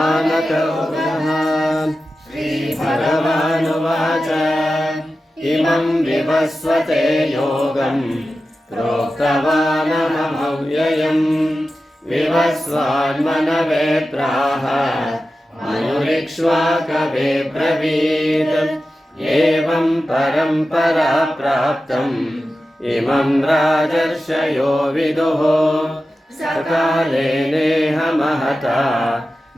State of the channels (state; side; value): normal; both; correlation 0.93